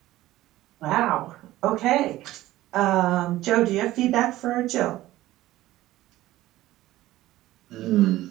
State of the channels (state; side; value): quieter; left; 15.9 dB